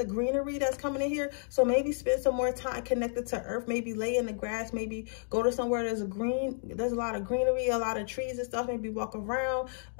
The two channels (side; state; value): right; silent; digital silence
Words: greenery that's coming in here. So maybe spend some more time connected to earth. Maybe lay in the grass. Maybe go to somewhere there's a lot of greenery, a lot of trees and stuff. Maybe walk around.